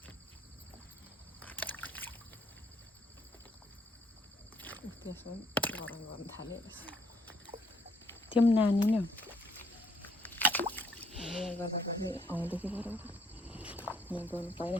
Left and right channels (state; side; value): normal; both; correlation 0.68